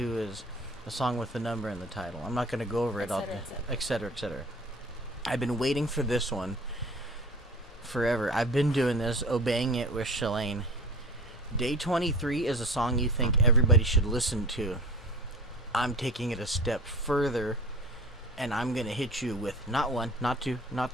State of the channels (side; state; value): both; normal; correlation 0.39